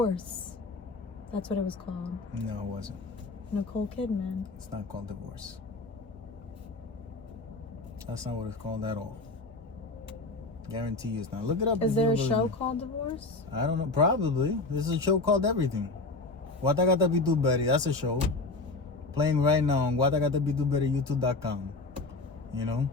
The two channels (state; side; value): quieter; right; 3.3 dB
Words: That's what it was called. No, it wasn't. Nicole Kidman. It's not called Divorce. That's not what it's called at all. Guarantee you it's not. Look it up. Is there a show called Divorce? I don't know. Probably. There's a show called Everything. Watagata Bituberi. That's a show. Playing right now on Watagata Bituberi, YouTube.com. You know?